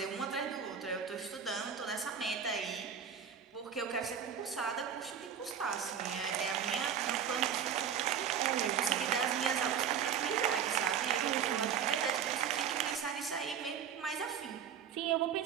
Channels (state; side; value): quieter; left; 8.0 dB